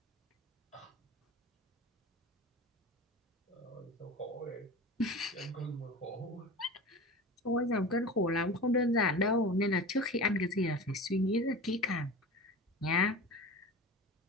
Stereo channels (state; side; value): normal; both; correlation 0.32